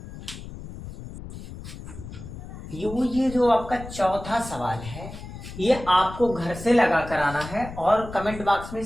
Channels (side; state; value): left; noise; rumble, 12 dB below the sound